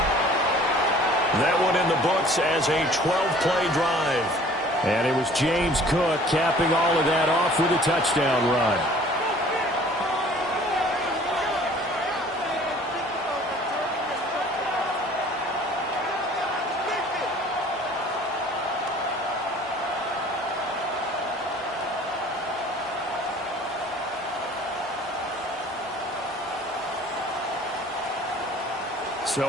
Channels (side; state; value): both; normal; correlation 0.51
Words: That one in the books as a 12-play drive. And it was James Cook capping all of that off with a touchdown run. So